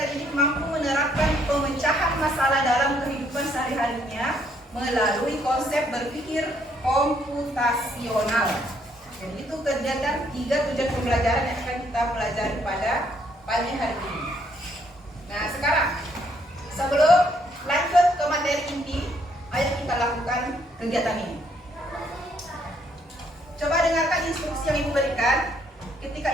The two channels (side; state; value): both; normal; correlation 0.69